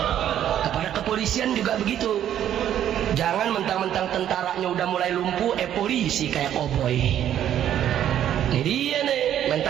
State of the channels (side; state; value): left; quieter; 10.7 dB